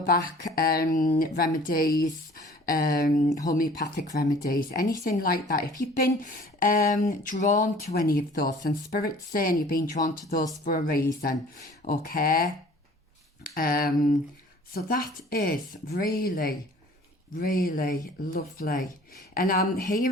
back remedies, homeopathic remedies, anything like that. If you've been drawn to any of those, and Spirit's saying you've been drawn to those for a reason, okay? So that is really lovely. And I'm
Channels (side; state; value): both; normal; correlation 0.49